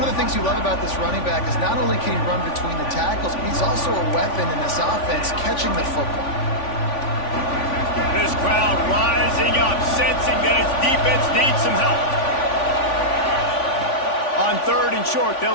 of the things you love about this running back is not only can he run between the tackles, but he's also a weapon in this offense catching the football. This crowd rising up, sensing that its defense needs some help. On third and short,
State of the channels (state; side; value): late; right; 3.5 ms